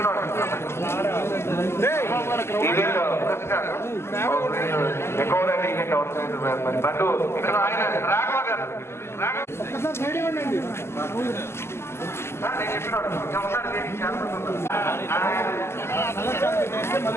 ఎక్కువ ఈవెంట్ అవుతుంది. బట్ ఇక్కడ ఆయన రాఘవ గారు నేను చెప్పినాడు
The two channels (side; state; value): right; late; 0.12 ms